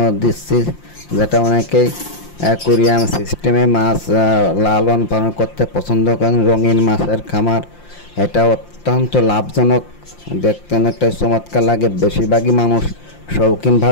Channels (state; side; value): late; right; 5.7 ms